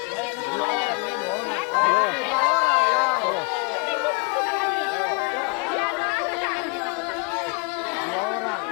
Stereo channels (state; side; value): quieter; right; 33.1 dB